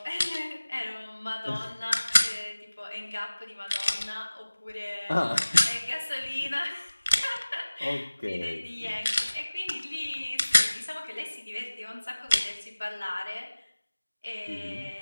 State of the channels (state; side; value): inverted; both; correlation -1.00